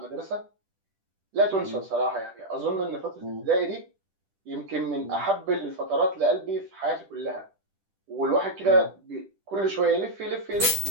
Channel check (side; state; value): left; late; 10 ms